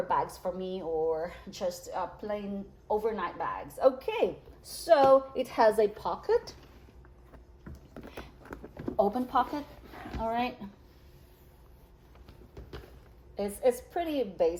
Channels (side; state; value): both; identical; correlation 1.00